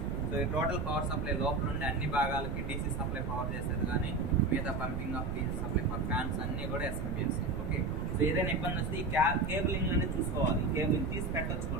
సో ఈ టోటల్ పవర్ సప్లై లోపల ఉండే అన్ని భాగాలకి డీసీ సప్లై పవర్ చేసేది కానీ మిగతా pumping of DC supply for fans అన్నీ కూడా ఎస్ఎంపిఎస్. ఓకే, సో ఏదైనా ఇబ్బంది వస్తే ఈ కేబులింగ్ అనేది చూసుకోవాలి. ఈ కేబులింగ్ తీసి పెట్టచ్చు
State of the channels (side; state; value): right; noise; rumble, 3 dB below the sound